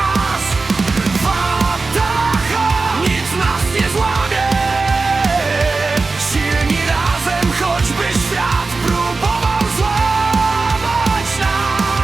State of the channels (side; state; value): left; quieter; 3.9 dB